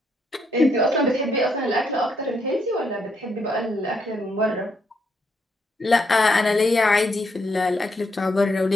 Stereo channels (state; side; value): normal; both; correlation 0.76